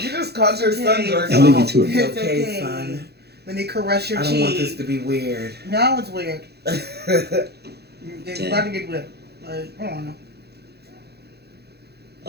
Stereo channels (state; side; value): late; left; 0.48 ms